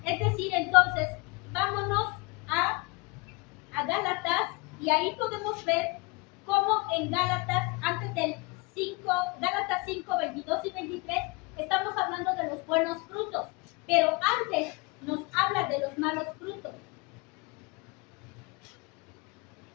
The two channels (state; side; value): quieter; right; 27.7 dB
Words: Es decir, entonces, vámonos a Gálatas y ahí podemos ver cómo en Gálatas, antes del 5, Gálatas 5, 22 y 23, estamos hablando de los buenos frutos. Pero